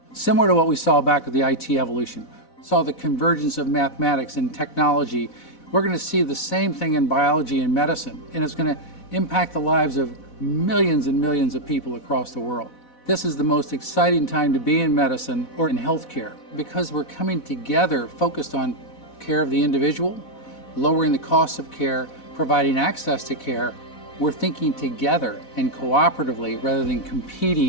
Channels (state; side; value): late; right; 4.1 ms